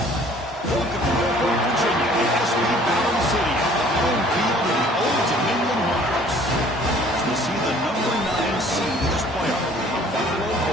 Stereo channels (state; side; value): normal; both; correlation 0.54